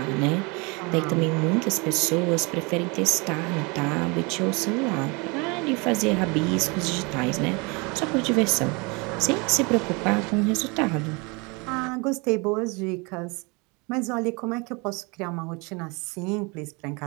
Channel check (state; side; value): quieter; left; 28.7 dB